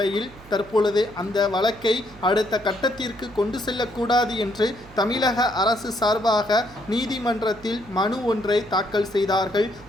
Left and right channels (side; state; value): right; noise; hum, 22 dB below the sound